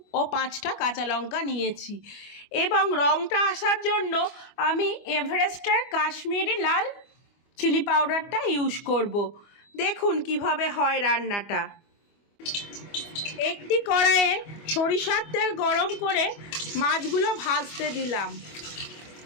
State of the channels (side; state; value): right; late; 25 ms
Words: ও 5টা কাঁচা লঙ্কা নিয়েছি। এবং রঙটা আসার জন্য আমি এভারেস্টের কাশ্মীরি লাল চিলি পাউডারটা ইউজ করব। দেখুন কিভাবে হয় রান্নাটা। একটি কড়াইয়ে সরিষার তেল গরম করে মাছগুলো ভাজতে দিলাম।